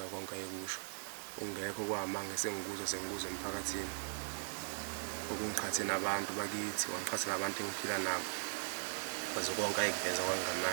konke ayekusho. Ungekho kwamanga sengikuza emphakathini. Okungiqhathe nabantu bakithi, wangiqhatha nabantu engiphila nabo. Kwaze konke ayekuveza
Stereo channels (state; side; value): silent; left; 52 dB below the other